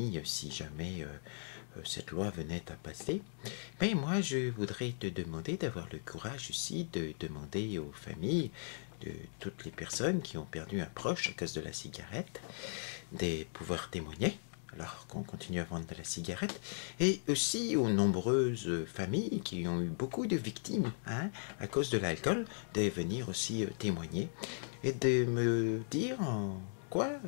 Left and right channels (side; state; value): right; silent; digital silence